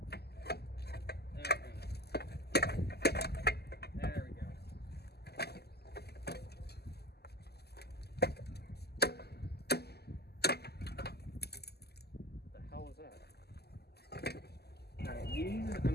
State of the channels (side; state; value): right; late; 0.47 ms